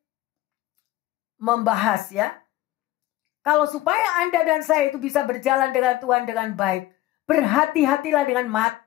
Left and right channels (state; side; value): quieter; right; 16.2 dB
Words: membahas ya. Kalau supaya Anda dan saya itu bisa berjalan dengan Tuhan dengan baik, berhati-hatilah dengan